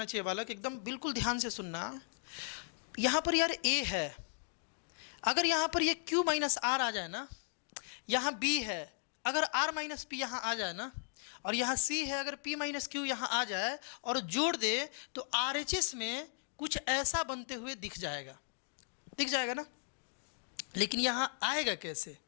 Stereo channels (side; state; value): right; silent; digital silence